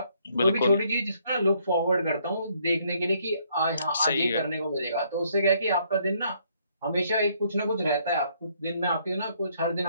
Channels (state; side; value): inverted; both; correlation -0.68